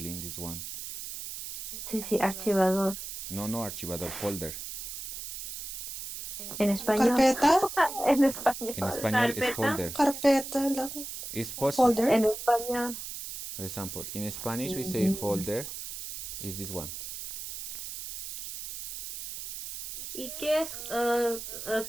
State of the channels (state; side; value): noise; right; hiss, 8 dB below the sound